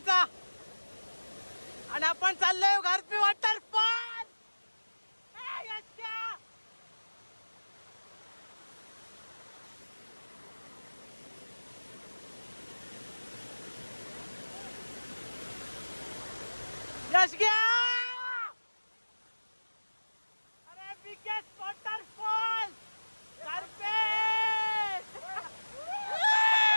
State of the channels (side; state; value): both; inverted; correlation -1.00